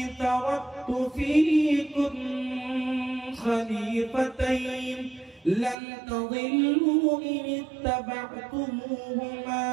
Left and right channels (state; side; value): drops out; left; at 5.8 s